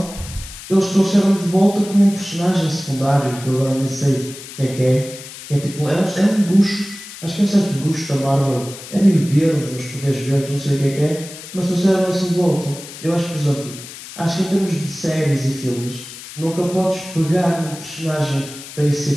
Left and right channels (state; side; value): noise; left; hiss, 14 dB below the sound